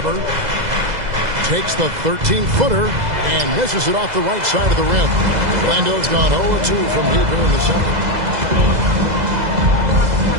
Takes the 13-footer and misses it off the right side of the rim. Orlando's gone 0-2 from deep here in the second.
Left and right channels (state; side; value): late; left; 2.0 ms